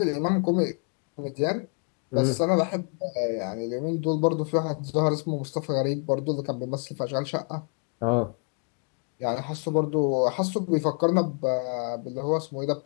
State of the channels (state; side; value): quieter; right; 38.0 dB